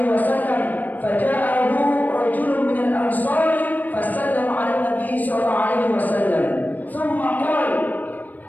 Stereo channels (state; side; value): late; right; 0.084 ms